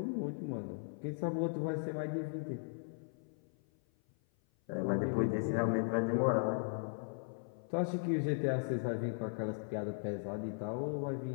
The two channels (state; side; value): silent; right; 53 dB below the other